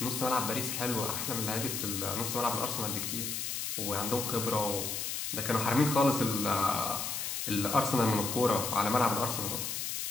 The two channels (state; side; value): noise; left; hiss, 3 dB below the sound